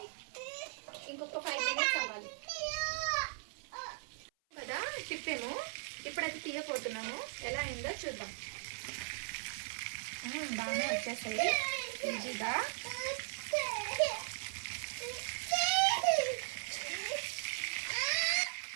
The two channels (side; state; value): left; silent; 52 dB below the other